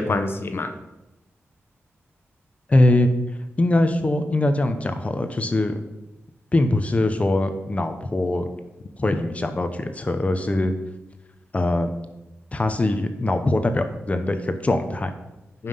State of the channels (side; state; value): both; normal; correlation 0.91